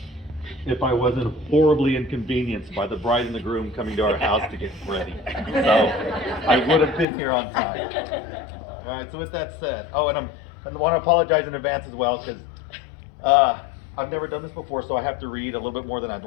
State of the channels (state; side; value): drops out; right; at 7.1 s